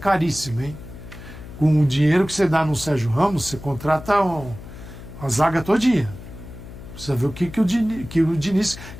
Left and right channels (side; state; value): left; noise; hum, 14 dB below the sound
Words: hein? Com o dinheiro que você dá no Sérgio Ramos, você contrata a zaga todinha. Precisa ver o que o Diniz...